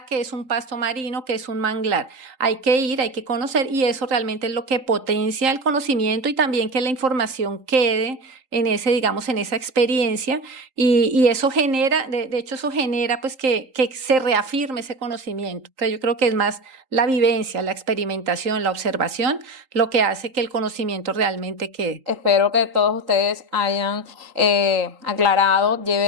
qué es un pasto marino, qué es un manglar. Hay que ir, hay que conocer y eso realmente es lo que potencia el conocimiento y también que la información quede en ese, digamos, en esa experiencia y eso genera, de hecho eso genera pues que se reafirme ese conocimiento. Entonces yo creo que es más la vivencia, la experimentación, la observación, lo que hace que el conocimiento realmente quede. Espero que todos ustedes hayan aclarado,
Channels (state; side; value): late; left; 3.8 ms